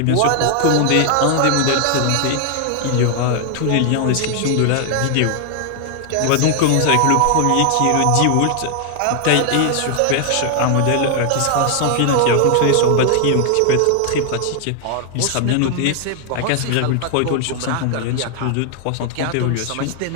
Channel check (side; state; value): both; different; correlation 0.00